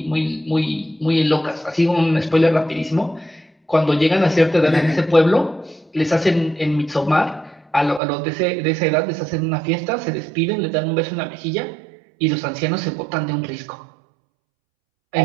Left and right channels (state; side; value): drops out; left; at 8.0 s